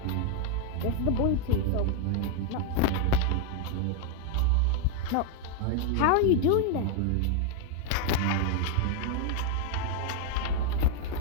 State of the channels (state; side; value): different; both; correlation 0.00